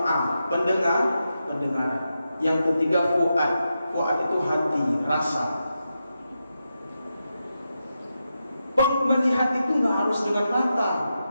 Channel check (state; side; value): inverted; both; correlation -0.88